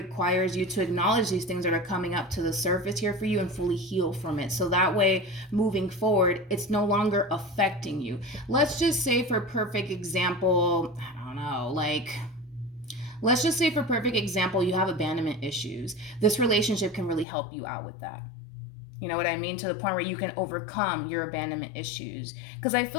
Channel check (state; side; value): drops out; right; at 17.2 s